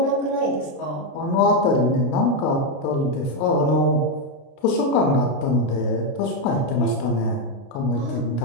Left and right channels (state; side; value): late; right; 29 ms